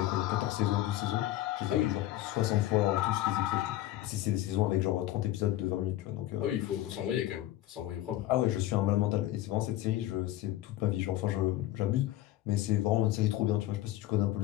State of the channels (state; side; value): quieter; right; 14.6 dB